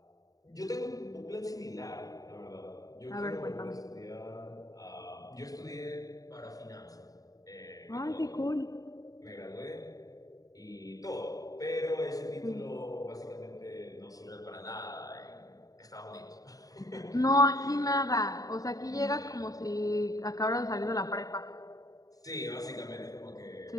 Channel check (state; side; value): late; right; 0.18 ms